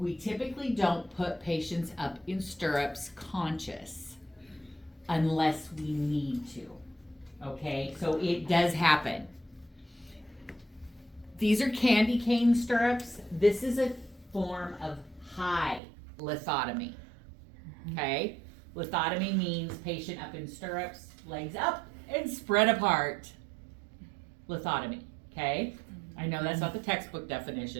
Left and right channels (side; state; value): left; drops out; at 15.8 s